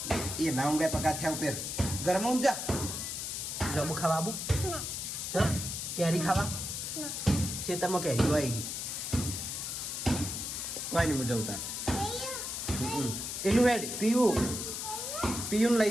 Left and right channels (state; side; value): noise; left; hiss, 4 dB below the sound